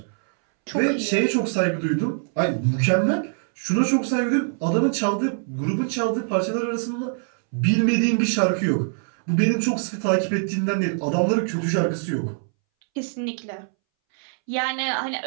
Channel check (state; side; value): silent; left; 62 dB below the other